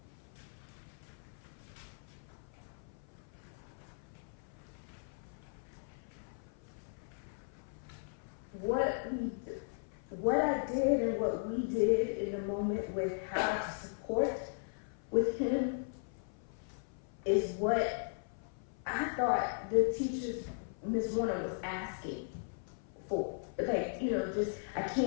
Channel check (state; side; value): silent; right; 53 dB below the other